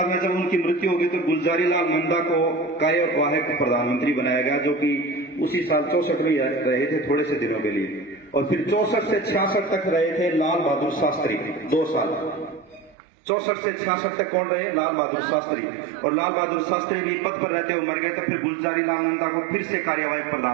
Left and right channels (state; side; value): drops out; left; at 13.0 s